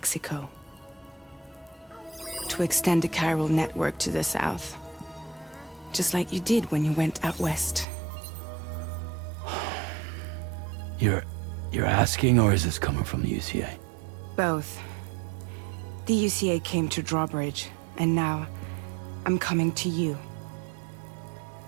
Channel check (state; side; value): drops out; left; at 7.9 s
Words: To extend the Carol network to the south. Just like you did when you went out west. You're asking, or is this coming from the UCA? Both. The UCA came to Drawbridge, and now I'm coming to you.